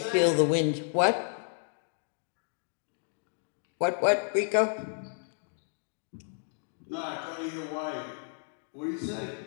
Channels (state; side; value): silent; right; digital silence